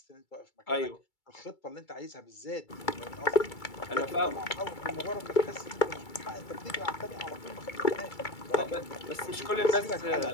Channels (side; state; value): right; late; 2.3 ms